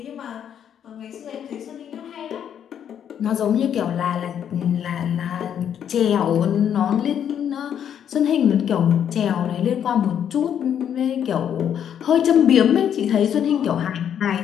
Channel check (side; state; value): right; quieter; 9.0 dB